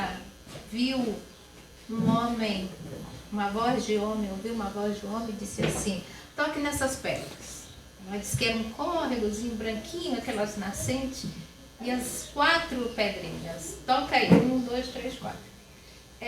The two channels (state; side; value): identical; both; correlation 1.00